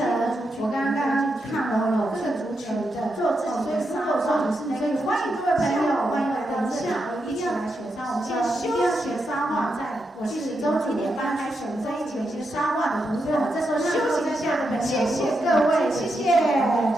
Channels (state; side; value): normal; both; correlation 0.84